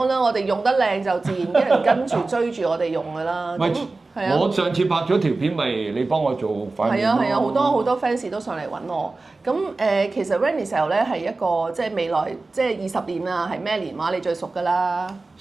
啦，我哋用得靚就自然啲人跟住追住我哋用㗎啦。我上次拍咗條片，咪你幫我做塊面咯。係啊，好多 fans 都上嚟揾我。咁其實 Vanessa 咧係一個即係未來即係20年啊，係咩年話你最熟㗎啦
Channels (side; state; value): left; quieter; 3.5 dB